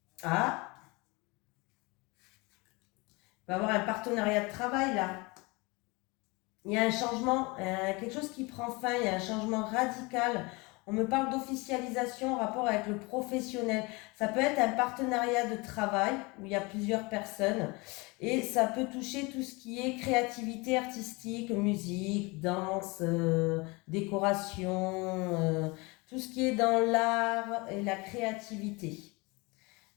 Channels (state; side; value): quieter; right; 26.2 dB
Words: Ah, il va y avoir un partenariat de travail là. Il y a un changement, quelque chose qui prend fin, il y a un changement radical. On me parle d'officialisation en rapport avec le professionnel. Ça peut être un partenariat de travail où il y a plusieurs personnes et ça peut toucher tout ce qui est créativité artistique, musique, danse, décoration, tout ce qui est dans l'art et la créativité.